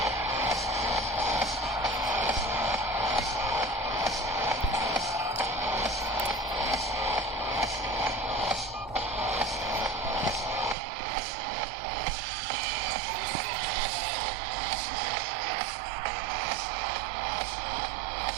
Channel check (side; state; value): left; drops out; at 10.8 s